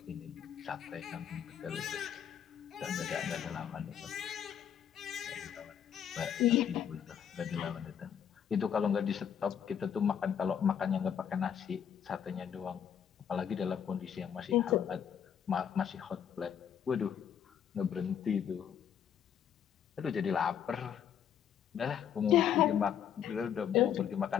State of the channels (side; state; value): right; quieter; 8.7 dB